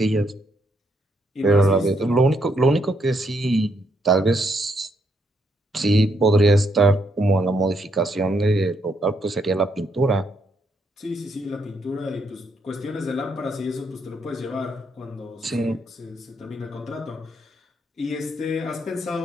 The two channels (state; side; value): normal; both; correlation 0.75